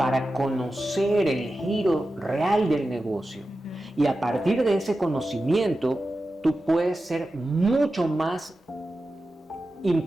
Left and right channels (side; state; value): both; normal; correlation 0.93